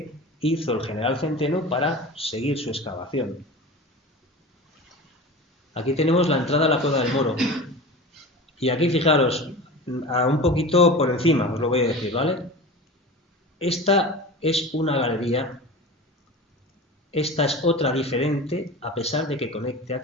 hizo el general Centeno para seguir su excavación. Aquí tenemos la entrada a la Cueva del Moro, y aquí fijaros, un poquito por encima, os lo voy a decir, ¿vale? Esta es una galería, esta es otra diferente, a pesar de que conecte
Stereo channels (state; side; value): normal; both; correlation 0.32